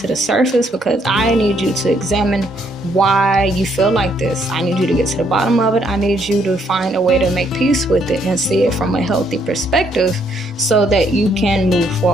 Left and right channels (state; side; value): normal; both; correlation 0.70